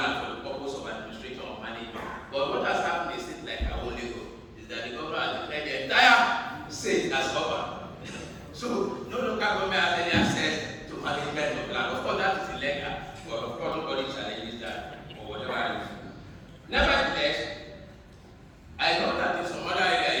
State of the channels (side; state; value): both; identical; correlation 1.00